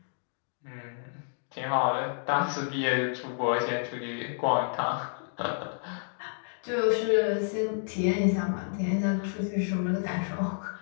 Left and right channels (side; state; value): right; silent; digital silence